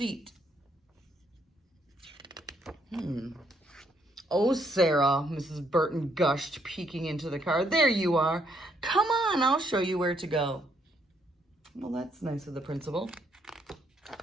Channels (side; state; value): both; normal; correlation 0.71